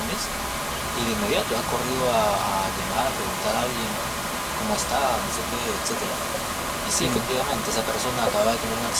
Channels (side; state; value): both; identical; correlation 1.00